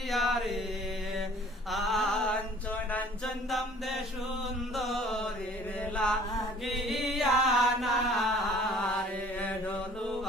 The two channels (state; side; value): normal; both; correlation 0.52